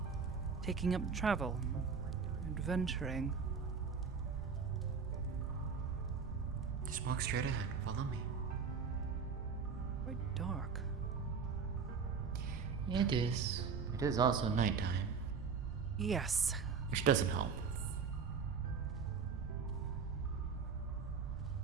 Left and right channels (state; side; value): quieter; left; 5.8 dB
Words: taking up travel, adventuring. Just walk straight ahead. Follow me. Quite dark. It is. It is also nighttime, Yes. which doesn't help.